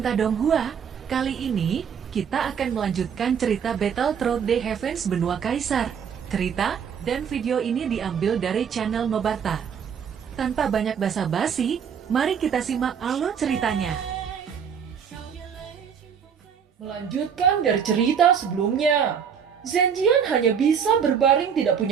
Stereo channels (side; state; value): left; quieter; 7.4 dB